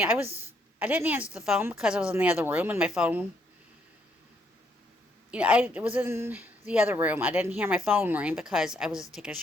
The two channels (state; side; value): normal; both; correlation 0.72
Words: I didn't answer the phone because I was in the other room, and my phone, I was in the other room. I didn't hear my phone ring because I was taking a